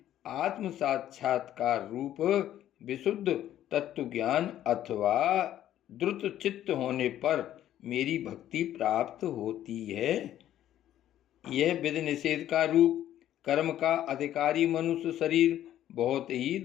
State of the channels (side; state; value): right; quieter; 12.0 dB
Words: आत्म साक्षात्कार रूप विशुद्ध तत्व ज्ञान अथवा द्रुत चित्त होने पर मेरी भक्ति प्राप्त होती है। यह विधि निषेध का रूप कर्म का अधिकारी मनुष्य शरीर बहुत ही